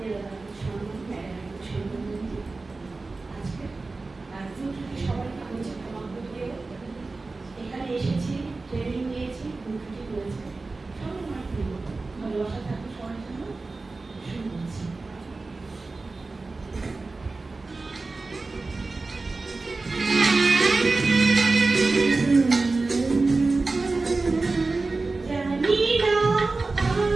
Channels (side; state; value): left; quieter; 3.6 dB